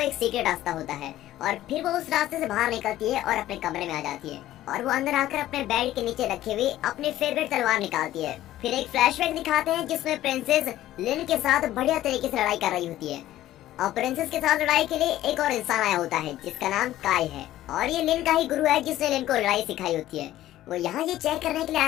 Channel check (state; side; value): quieter; right; 14.1 dB